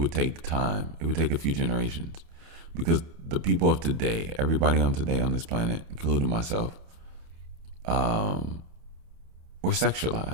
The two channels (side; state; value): left; late; 28 ms